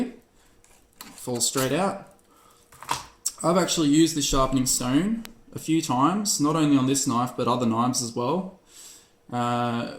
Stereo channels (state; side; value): identical; both; correlation 1.00